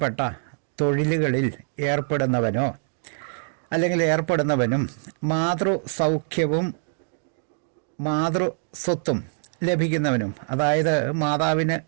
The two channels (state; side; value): silent; left; digital silence